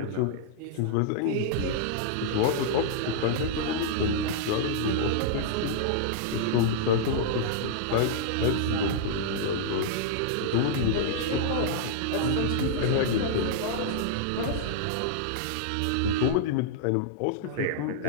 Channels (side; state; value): both; different; correlation -0.02